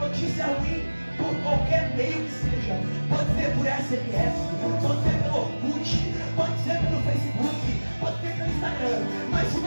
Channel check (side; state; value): both; inverted; correlation -1.00